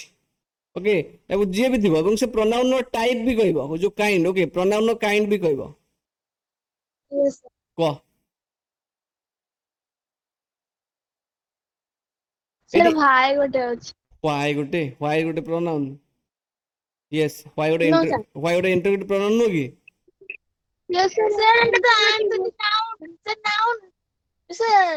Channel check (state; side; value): identical; both; correlation 1.00